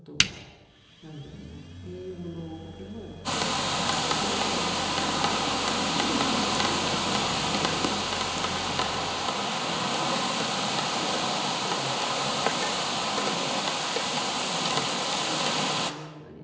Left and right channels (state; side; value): identical; both; correlation 1.00